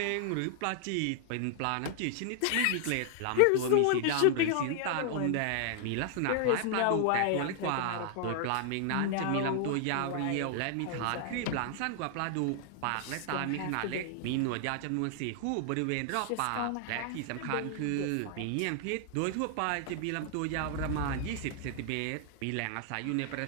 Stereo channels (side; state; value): both; different; correlation 0.00